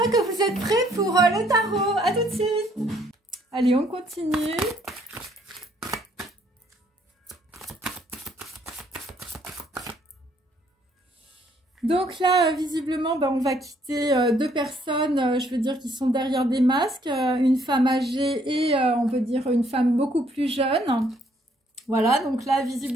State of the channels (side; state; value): both; normal; correlation 0.66